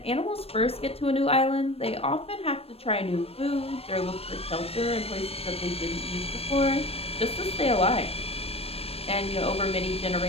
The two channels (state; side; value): late; right; 0.28 ms